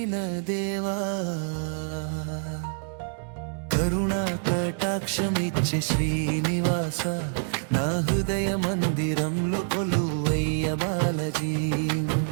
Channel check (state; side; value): silent; left; digital silence